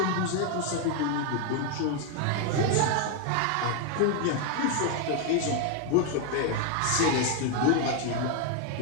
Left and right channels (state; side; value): different; both; correlation 0.01